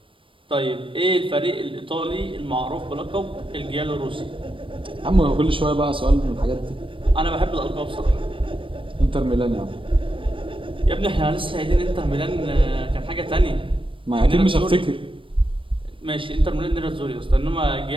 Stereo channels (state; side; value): late; left; 0.25 ms